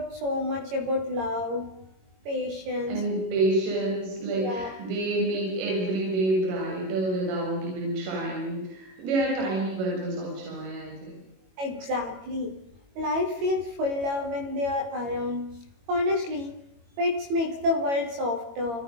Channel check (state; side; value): late; left; 22 ms